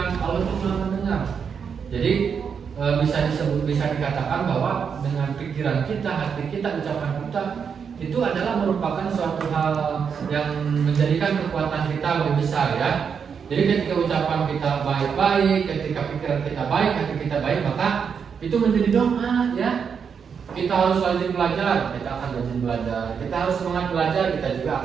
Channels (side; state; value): left; quieter; 6.7 dB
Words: Allah itu maha mendengar. Jadi bisa dikatakan bahwa dengan pikiran kita, hati kita, ucapan kita itu adalah merupakan suatu hal yang menjadikan kekuatan kita lebih besar, ya. Jadi ketika ucapan kita baik-baik, ketika pikiran kita baik, hati kita baik, maka itu menjadi doa, ya. Kita harus rajin belajar, kita akan rajin belajar. Kita harus semangat belajar, kita juga